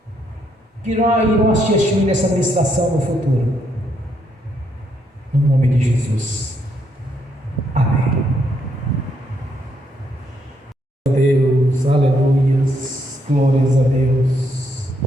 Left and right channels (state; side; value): normal; both; correlation 0.75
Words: que irão assistir nessa ministração no futuro. No nome de Jesus. Amém. Deus, aleluias, glórias a Deus.